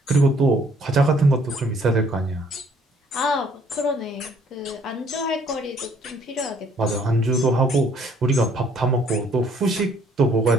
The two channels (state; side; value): normal; both; correlation 0.62